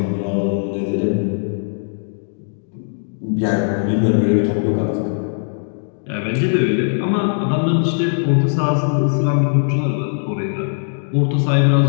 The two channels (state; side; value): silent; right; digital silence